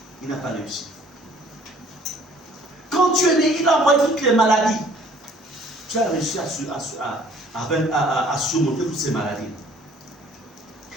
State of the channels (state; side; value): normal; both; correlation 0.56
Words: Il n'a pas réussi. Quand tu es né, il a envoyé toutes les maladies. Tu as réussi à surmonter toutes ces maladies.